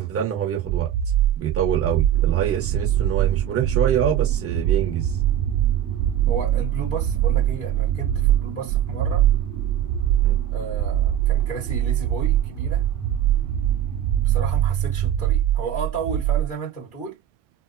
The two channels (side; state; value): left; quieter; 10.6 dB